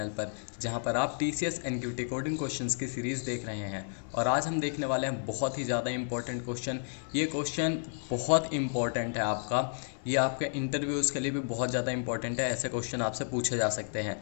पर, जहां पर आप टीसीएस एनक्यूटी कोडिंग क्वेश्चंस की सीरीज़ देख रहे हैं। और आज हम देखने वाले हैं बहुत ही ज़्यादा इंपॉर्टेंट क्वेश्चन। ये क्वेश्चन बहुत इंपॉर्टेंट है आपका, ये आपके इंटरव्यूज़ के लिए भी बहुत ज़्यादा इंपॉर्टेंट है। ऐसे क्वेश्चन आपसे पूछे जा सकते हैं।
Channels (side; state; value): right; silent; 57 dB below the other